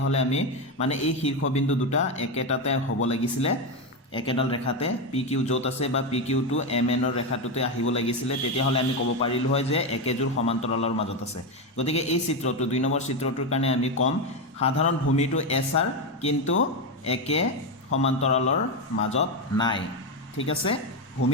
হলে আমি মানে এই শীৰ্ষবিন্দু দুটা একেটাতে হ'ব লাগিছিল একেডাল ৰেখাতে PQ যত আছে বা PQ টো MN ৰ ৰেখাটোতে আহিব লাগিছিল তেতিয়া হলে আমি ক'ব পাৰিলো হয় যে একেজোৰ সমান্তৰালৰ মাজত আছে গতিকে এই চিত্ৰটো দুই নম্বৰ চিত্ৰটোৰ কাৰণে আমি কম সাধাৰণ ভূমিটো SR কিন্তু একে সমান্তৰালৰ মাজত নাই ঠিক আছে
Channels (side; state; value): both; normal; correlation 0.11